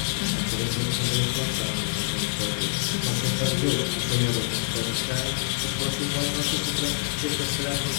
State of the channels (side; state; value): right; silent; 61 dB below the other